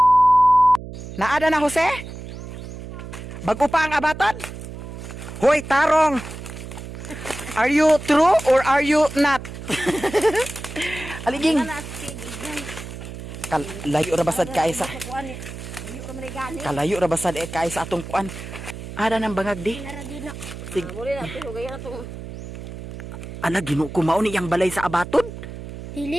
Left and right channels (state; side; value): noise; right; hum, 11 dB below the sound